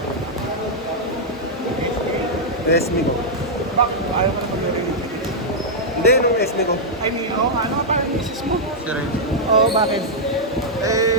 SB ko. Bakit? Ayaw ko na maglaro yun. Hindi, nung SB ko. Ay, Milo, ano pa ang isis mo? Si Ren. Oo, bakit?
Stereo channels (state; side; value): normal; both; correlation -0.06